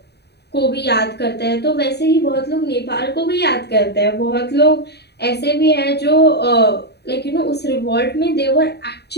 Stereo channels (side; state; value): right; late; 0.48 ms